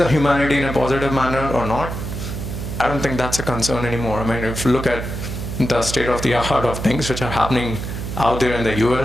humanity in a positive manner or not, I don't think that's a concern anymore. I mean, if you look at the state of the art of things which are happening out there in the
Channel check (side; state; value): right; noise; hum, 6 dB below the sound